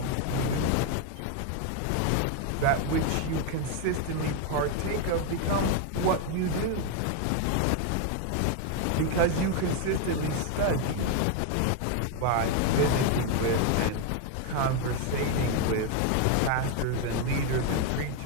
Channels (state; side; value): different; both; correlation 0.01